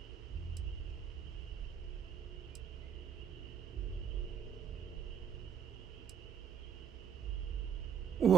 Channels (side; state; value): left; quieter; 8.1 dB